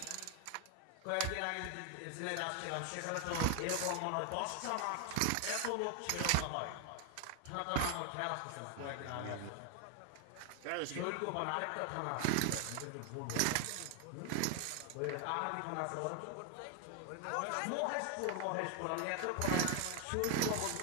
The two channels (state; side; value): different; both; correlation 0.00